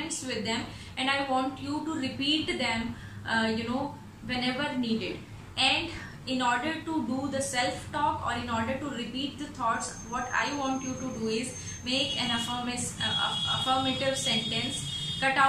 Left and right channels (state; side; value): identical; both; correlation 1.00